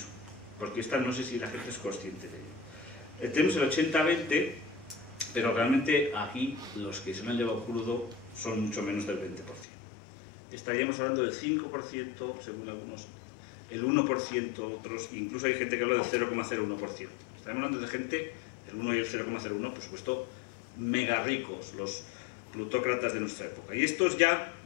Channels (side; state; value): right; drops out; at 9.7 s